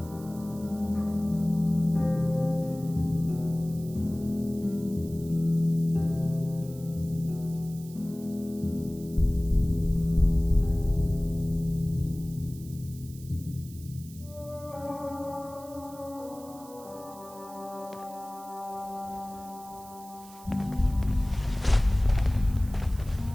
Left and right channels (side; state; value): right; noise; hiss, 20 dB below the sound